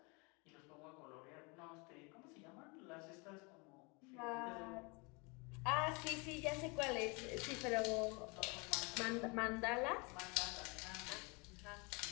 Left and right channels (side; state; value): right; quieter; 29.8 dB